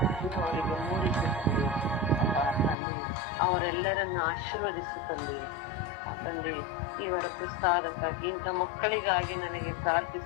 ಅವರಿಗೆ ಮೂಡಿಸುತ್ತದೆ. ಅವರೆಲ್ಲರನ್ನು ಆಶೀರ್ವದಿಸುತ್ತದೆ. ತಂದೆ, ಇವರ ಪ್ರಸಾದಕ್ಕಾಗಿ ಇಂಥ ಮಕ್ಕಳಿಗಾಗಿ ನನಗೆ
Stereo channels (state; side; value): drops out; right; at 2.8 s